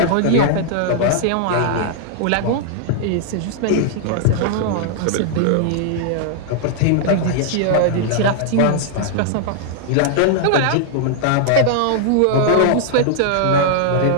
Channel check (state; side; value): different; both; correlation -0.01